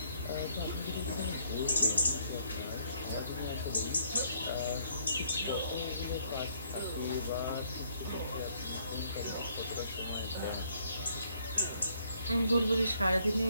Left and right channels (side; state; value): both; inverted; correlation -0.67